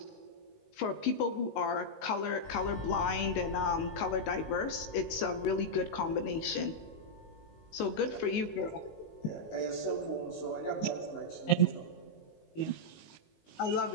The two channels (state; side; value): late; right; 19 ms